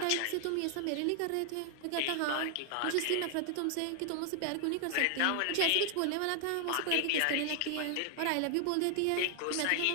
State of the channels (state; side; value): different; both; correlation 0.00